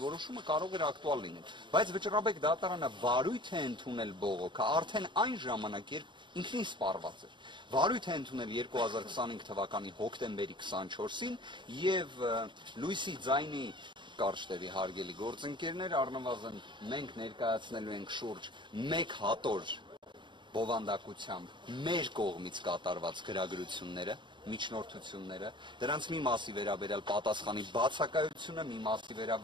որոշումը կարող էր ակտուալ լինել, բայց վճռաբեկ դատարանը վարույթ է ընդունել բողոքը արդեն այն ժամանակ, երբ ինքնին սպառված էր։ Վարույթ է ընդունել 2025 թվականի հոկտեմբերի 24-ին եւ լույսի ձայնի կարճտևի հարգելի գործընկերներ, առնվազն մենք ներկայացնելու ենք շուրջ 1 հատոր բովանդակությամբ մեր կողմից կատարված գրագրությունները, միջնորդությունները, դրանց մի մասի վերաբերյալ պատասխանի բացակայությունը, մի մասի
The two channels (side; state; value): left; late; 0.23 ms